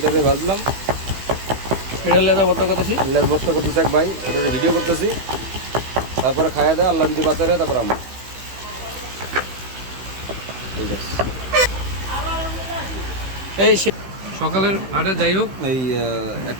দিয়ে ভাজলাম। এটা লেদা বর্তা করতেছি। লেজ ভর্তা করতেছে এক ভাই, ওটা ভিডিও করতেছি। তারপরে খাইয়া দেয়, আল্লাহ যদি বাঁচারে তারপর আমরা। ঠিক আছে। এই সকালের আটে যাই হোক এই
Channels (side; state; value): left; late; 16 ms